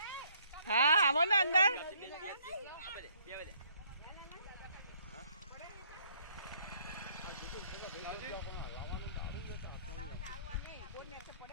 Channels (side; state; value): both; inverted; correlation -0.65